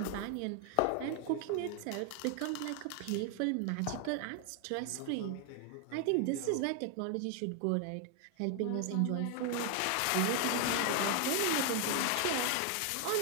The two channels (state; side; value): different; both; correlation 0.00